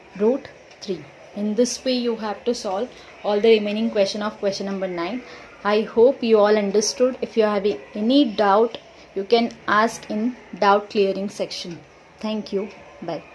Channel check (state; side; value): identical; both; correlation 1.00